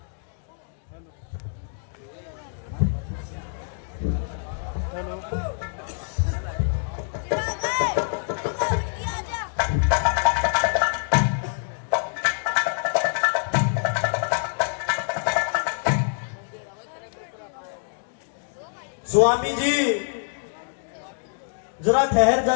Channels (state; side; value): silent; right; digital silence